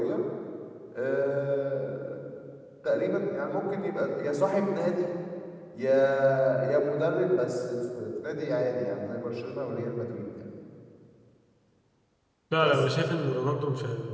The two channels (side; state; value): both; identical; correlation 1.00